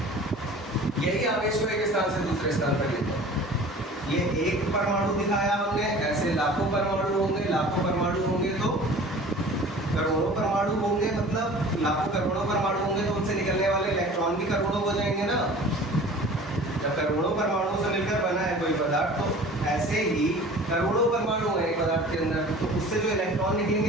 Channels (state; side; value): normal; both; correlation 0.43